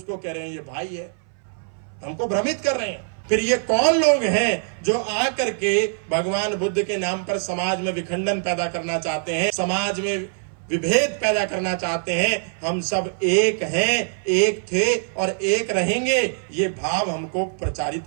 कह रहे हैं ये भाई है। हमको भ्रमित कर रहे हैं। फिर ये कौन लोग हैं जो आकर के भगवान बुद्ध के नाम पर समाज में विखंडन पैदा करना चाहते हैं, समाज में विभेद पैदा करना चाहते हैं? हम सब एक हैं, एक थे और एक रहेंगे, ये भाव हमको प्रचारित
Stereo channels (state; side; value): silent; left; 59 dB below the other